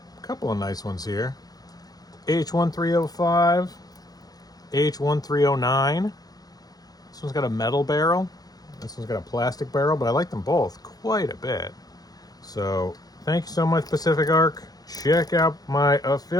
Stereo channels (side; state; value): right; late; 0.19 ms